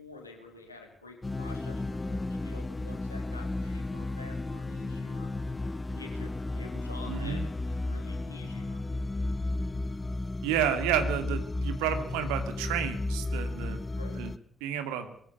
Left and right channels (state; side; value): normal; both; correlation 0.67